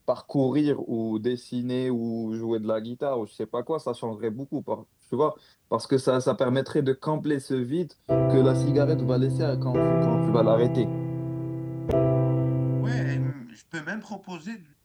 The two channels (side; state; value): both; identical; correlation 1.00